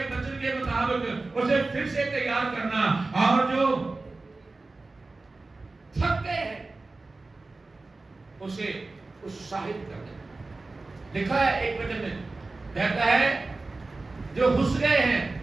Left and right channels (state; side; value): quieter; left; 3.4 dB